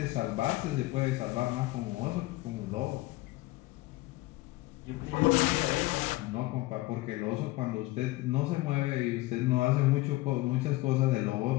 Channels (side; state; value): right; quieter; 19.5 dB